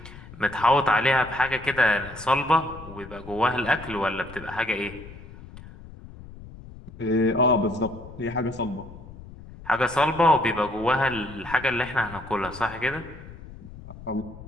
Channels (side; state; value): left; noise; rumble, 16 dB below the sound